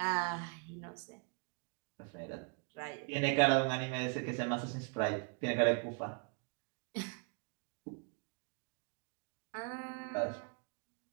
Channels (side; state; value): left; quieter; 36.6 dB